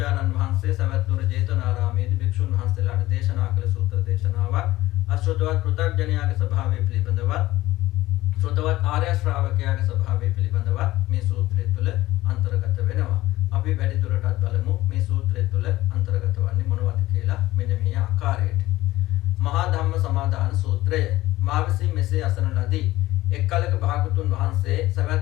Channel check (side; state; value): right; quieter; 17.1 dB